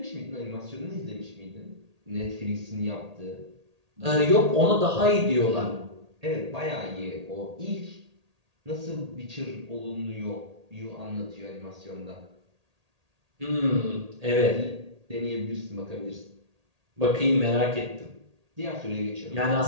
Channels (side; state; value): left; late; 1.8 ms